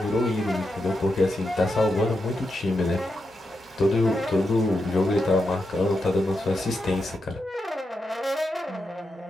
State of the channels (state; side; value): normal; both; correlation 0.86